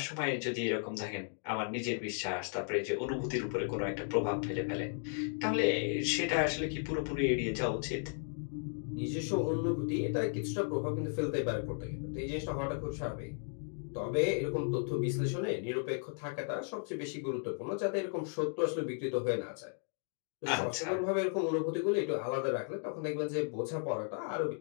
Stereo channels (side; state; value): right; silent; 54 dB below the other